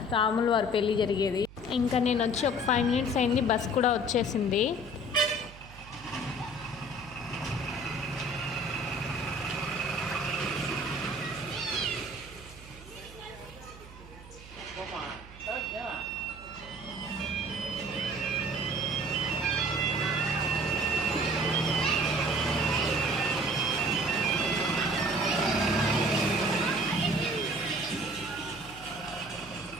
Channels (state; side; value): noise; right; hum, 18 dB below the sound